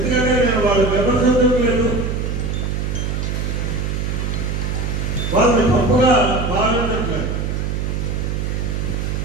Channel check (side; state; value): right; noise; hum, 1 dB below the sound